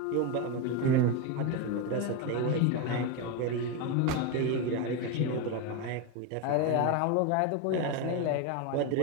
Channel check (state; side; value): different; both; correlation 0.03